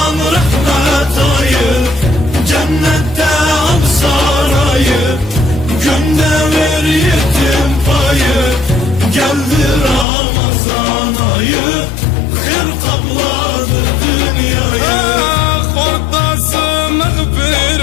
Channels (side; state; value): right; drops out; at 10.1 s